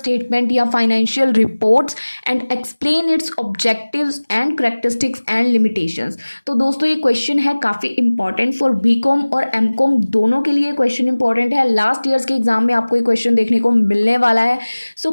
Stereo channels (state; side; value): inverted; both; correlation -1.00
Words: या financial reports and explain its objectives and characteristics and limitations. तो दोस्तों, ये क्वेश्चन है काफ़ी इंपॉर्टेंट फॉर बीकॉम और एमकॉम दोनों के लिए क्वेश्चन इंपॉर्टेंट है। लास्ट ईयर्स के एग्जाम में आपको ये क्वेश्चन देखने को मिलने वाला है। सो